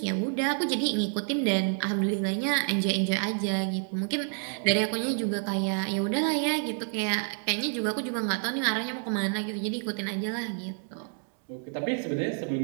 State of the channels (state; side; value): silent; left; 59 dB below the other